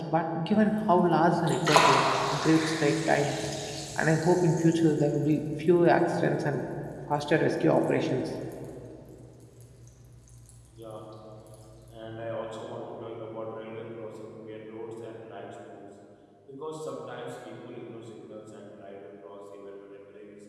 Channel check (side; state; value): both; identical; correlation 1.00